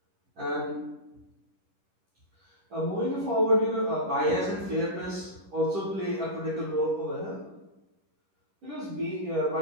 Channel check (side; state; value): left; late; 10 ms